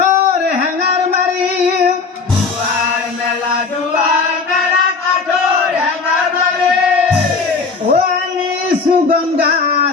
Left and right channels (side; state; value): right; quieter; 4.7 dB